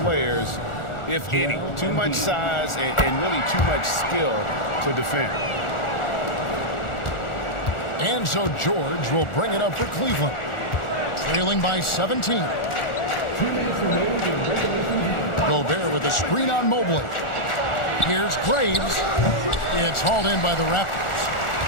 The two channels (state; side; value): late; right; 1.4 ms